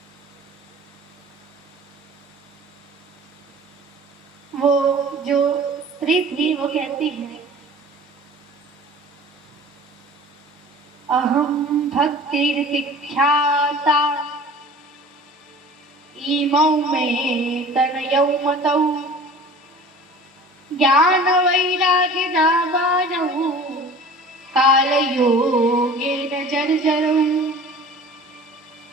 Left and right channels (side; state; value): both; normal; correlation 0.43